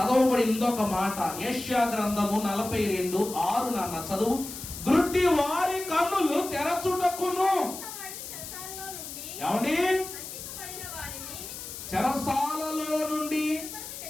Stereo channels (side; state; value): left; noise; hiss, 10 dB below the sound